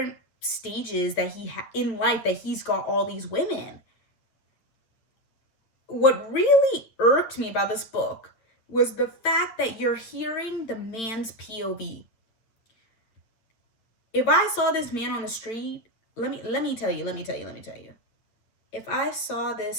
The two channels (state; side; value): late; right; 9.1 ms